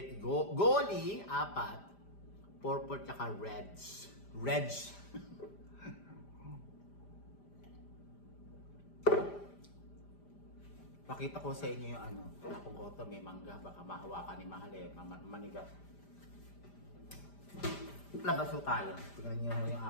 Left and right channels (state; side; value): late; right; 5.0 ms